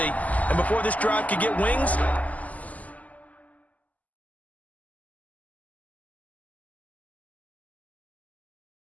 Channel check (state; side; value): late; right; 0.075 ms